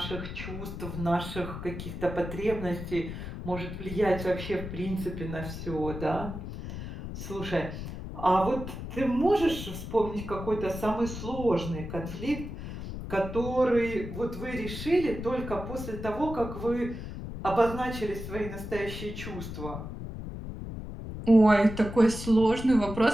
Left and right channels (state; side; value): noise; left; rumble, 8 dB below the sound